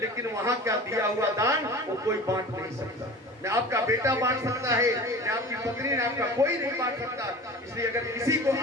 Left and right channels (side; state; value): both; normal; correlation 0.37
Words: वहां का दिया हुआ दान वो कोई बांट नहीं सकता। न आपका बेटा बांट सकता है, न आपकी पत्नी, न आपका कोई नहीं बांट सकता। इसलिए अगर किसी को